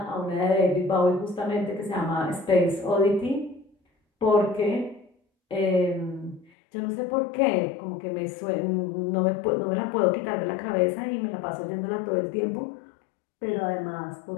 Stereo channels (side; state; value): right; drops out; at 6.5 s